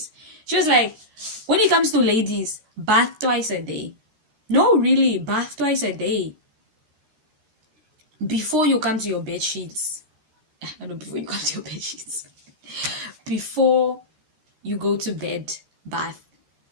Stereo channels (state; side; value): late; left; 13 ms